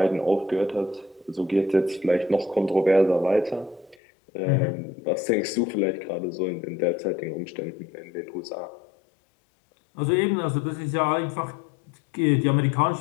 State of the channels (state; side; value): drops out; right; at 4.0 s